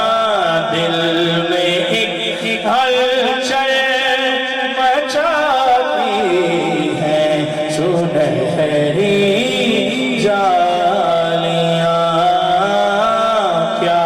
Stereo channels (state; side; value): identical; both; correlation 1.00